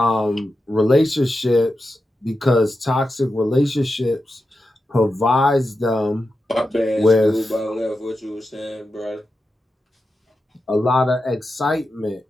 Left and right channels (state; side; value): normal; both; correlation 0.90